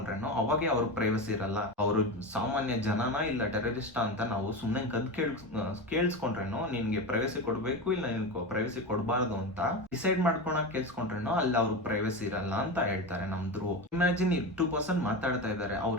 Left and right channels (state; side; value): normal; both; correlation 0.22